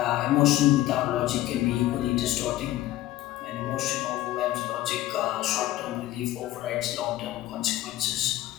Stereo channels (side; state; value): right; quieter; 15.2 dB